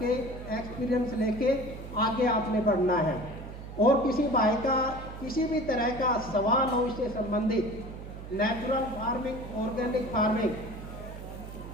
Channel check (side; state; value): right; noise; hum, 11 dB below the sound